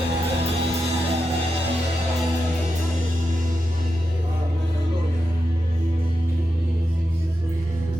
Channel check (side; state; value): both; normal; correlation 0.89